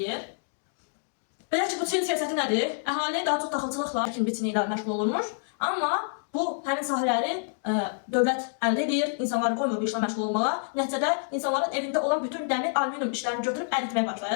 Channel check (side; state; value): right; silent; digital silence